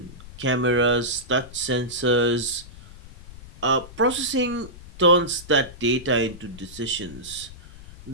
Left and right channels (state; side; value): noise; left; rumble, 17 dB below the sound